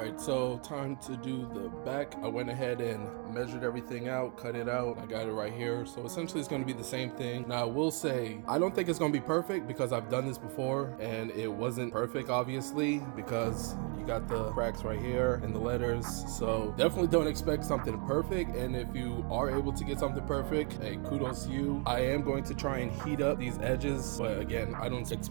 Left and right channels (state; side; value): quieter; left; 34.3 dB